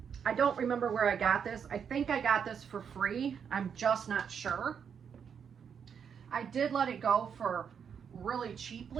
I don't remember where I got this. I think I got this for free. I'm just not sure. I did let it go for really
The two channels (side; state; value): left; quieter; 7.3 dB